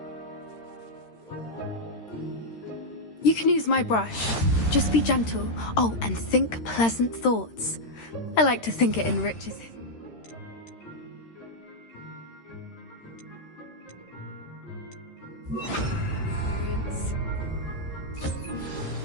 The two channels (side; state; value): right; late; 13 ms